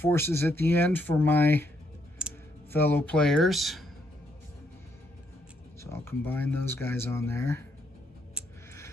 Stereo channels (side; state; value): both; normal; correlation 0.75